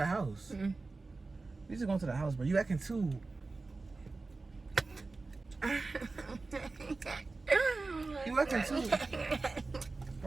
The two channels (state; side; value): quieter; left; 3.6 dB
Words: house. Mm. We just going to the house, bro. You acting too. You acting too.